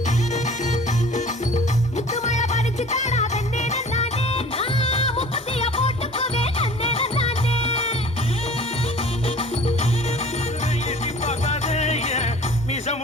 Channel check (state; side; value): normal; both; correlation 0.46